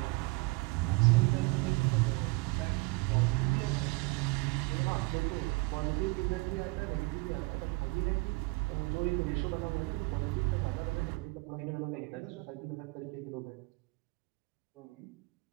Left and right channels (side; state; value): left; quieter; 26.3 dB